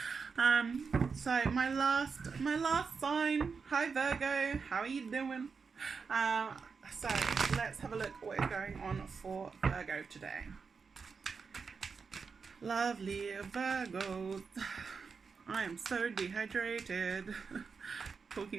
So my last sign. Hi Virgo, how are you doing? So let's have a look at what is going on for Virgo today. Lovely Virgos. I am so dehydrated.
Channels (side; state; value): left; quieter; 5.3 dB